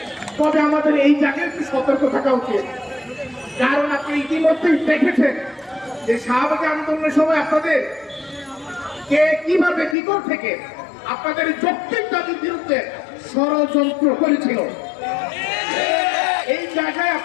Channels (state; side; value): drops out; right; at 10.0 s